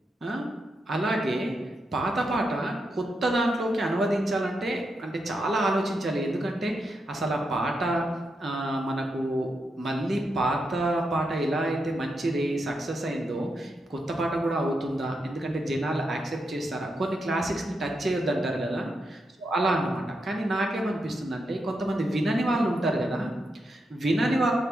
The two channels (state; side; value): normal; both; correlation 0.84